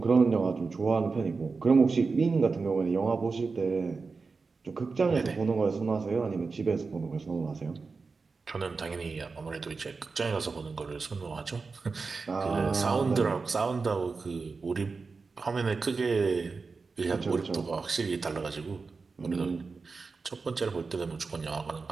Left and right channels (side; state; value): left; quieter; 4.4 dB